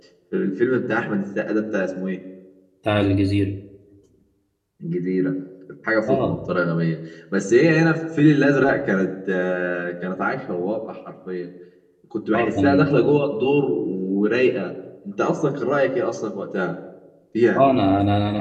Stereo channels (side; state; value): both; identical; correlation 1.00